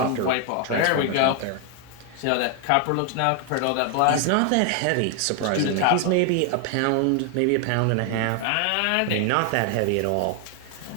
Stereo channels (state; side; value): different; both; correlation 0.00